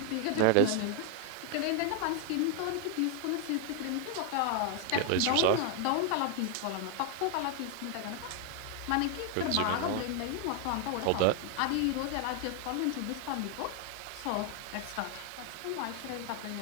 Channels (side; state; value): both; different; correlation 0.01